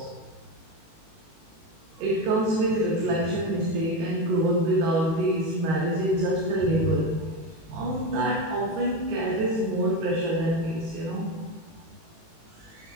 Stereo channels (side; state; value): left; late; 18 ms